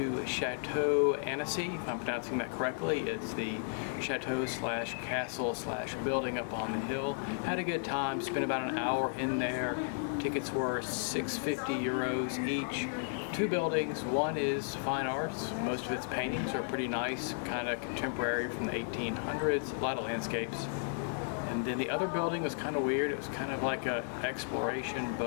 Chateau Annecy, if I'm pronouncing that correctly. It's the chateau slash castle slash building up on the hill. Had a good time, spent about an hour in there. Tickets were €650 each. Two buildings. One is fine arts. Most of its paintings are pretty nice, kind of contemporary from the 1800s, a lot of landscapes. And then the other building was kind of weird. It was kind of like a exploration,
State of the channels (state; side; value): silent; right; digital silence